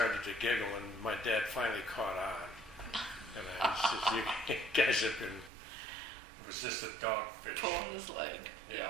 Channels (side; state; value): left; drops out; at 5.5 s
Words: to giggle, and my dad finally caught on. And I said, "You guys have been." It was just a dogfish. pulling his leg?